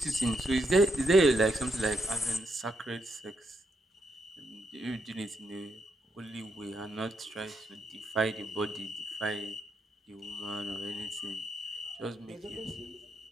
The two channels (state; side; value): normal; both; correlation 0.80